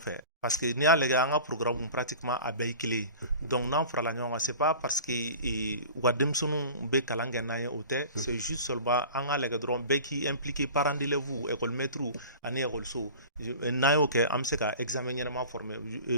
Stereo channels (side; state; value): both; inverted; correlation -0.39